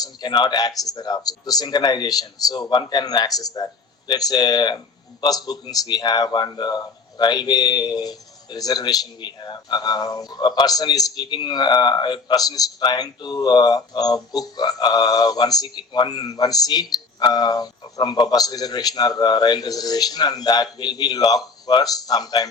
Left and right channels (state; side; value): quieter; right; 4.3 dB